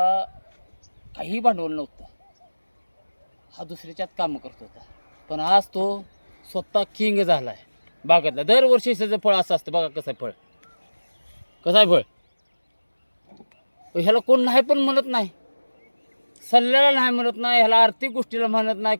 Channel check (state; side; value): inverted; both; correlation -1.00